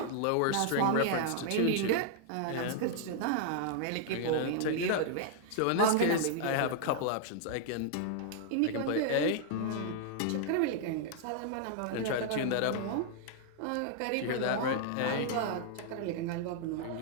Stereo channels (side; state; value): both; different; correlation -0.01